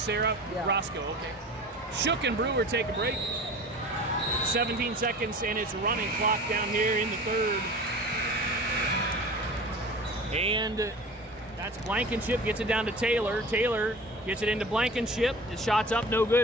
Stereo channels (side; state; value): both; normal; correlation 0.38